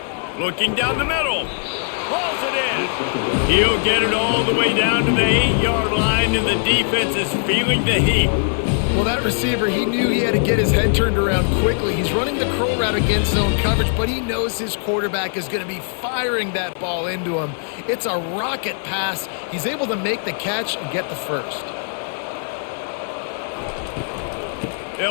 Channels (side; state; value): right; silent; 59 dB below the other